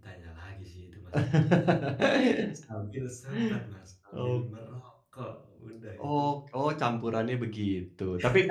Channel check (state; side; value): identical; both; correlation 1.00